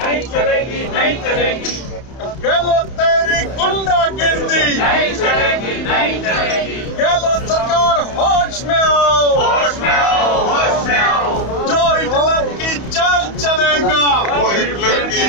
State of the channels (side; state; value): right; late; 31 ms